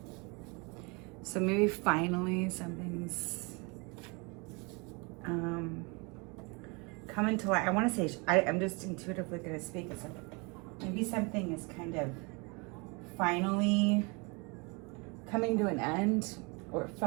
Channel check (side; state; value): left; quieter; 30.0 dB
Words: So maybe finally something's coming to light. I want to say, I'm just intuitively going to speak. It's like maybe something is kind of finally coming to an end, or